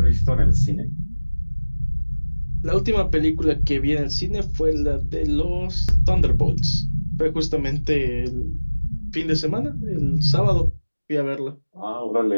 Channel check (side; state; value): both; inverted; correlation -1.00